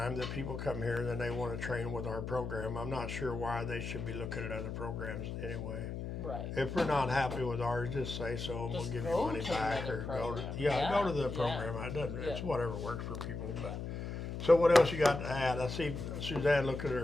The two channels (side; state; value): left; noise; hum, 5 dB below the sound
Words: that people come here and then they want to train with our program. I'm not sure why they should be looking at other programs anyway. Right. If we're not happy with ours, just say so, and we'll Just give you go money to back, another or go to program. go to the Yeah. program. It doesn't. It's Yeah. whatever works for people. But so what else you got to add? I see Suzanne look at